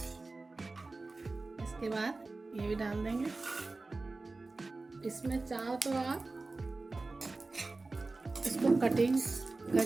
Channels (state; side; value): quieter; left; 3.4 dB